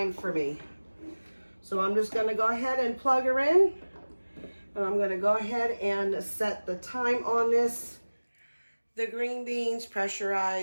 for me. So I'm just going to go ahead and plug her in, and I'm going to go ahead and set the time on this. The green beans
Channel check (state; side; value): inverted; both; correlation -1.00